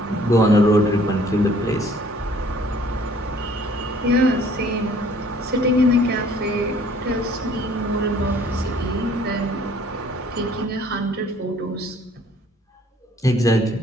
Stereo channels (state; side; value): normal; both; correlation 0.57